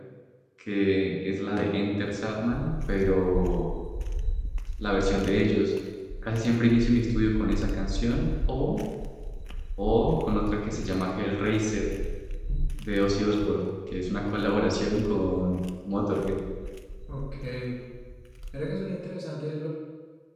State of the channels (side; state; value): both; identical; correlation 1.00